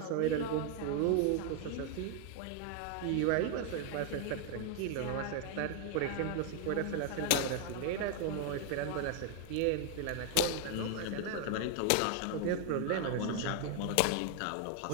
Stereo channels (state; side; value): different; both; correlation 0.00